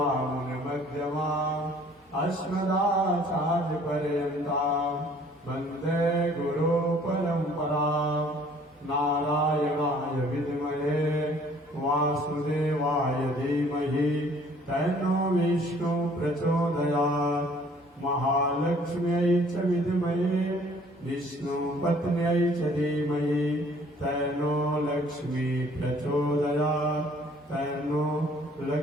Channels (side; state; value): both; normal; correlation 0.56